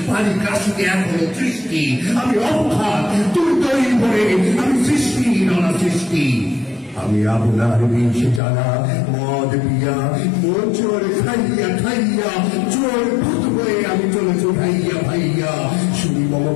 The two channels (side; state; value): right; drops out; at 8.4 s